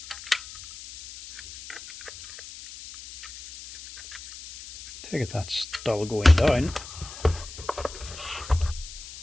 Take it that's still going down.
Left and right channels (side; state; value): left; noise; hiss, 14 dB below the sound